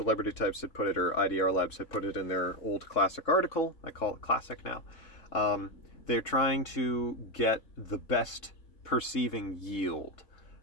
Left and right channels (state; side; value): late; right; 3.7 ms